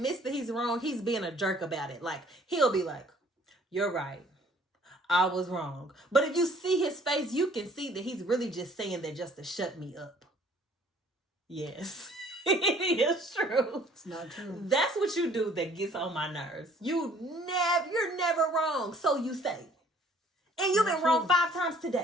that he's wrong, he's being a jerk about it. Like, he'll be like, you're right. I was wrong. But if you see his face, you can see that he's really just saying that just to shut me up. Yes. It is true. It's not true. That's what you do that gets on my nerves. You're never wrong. So you say. And you've been wrong 5 times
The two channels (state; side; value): normal; both; correlation 0.57